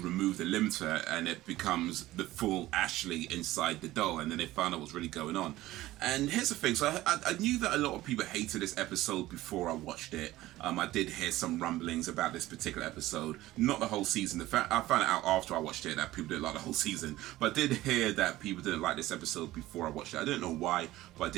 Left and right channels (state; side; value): quieter; left; 16.5 dB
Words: the limiter and it becomes the full Ashley inside the doll, and then they found out what's really going on. And here's the thing, so I knew that a lot of people hated this episode before I watched it. I did hear some rumblings about this particular episode, not the whole season. I found out after I watched it that people didn't like the whole season, but I did hear that people didn't like this episode before I watched it. I don't know why, but I